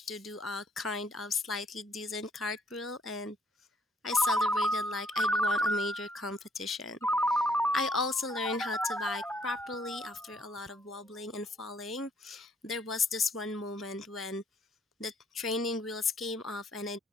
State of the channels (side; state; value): both; normal; correlation 0.66